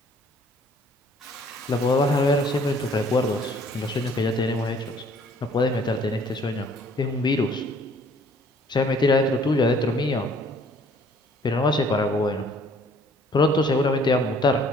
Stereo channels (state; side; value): normal; both; correlation 0.58